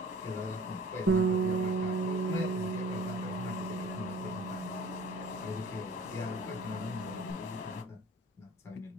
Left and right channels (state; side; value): normal; both; correlation 0.48